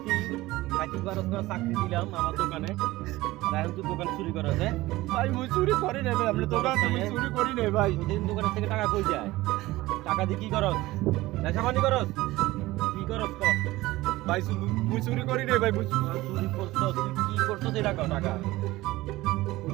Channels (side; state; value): left; quieter; 18.4 dB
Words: খাইতে পারস না চাকরি দিলাম আমার দোকানে আর এখন তুই দোকান চুরি করস হ্যাঁ? ভাই মুই চুরি করি রে ভাই, আপনি দোকান তুমি চুরি করি রে ভাই। প্রতিদিন দোকানের থেকে টাকা কই যায়? টাকা দিয়ে কি করস? নেশা পানি করস? কি করস ক? ভাই মুই চুরি করি রে ভাই, চুরি করছস তুই কি করছস এই টাকা টাকা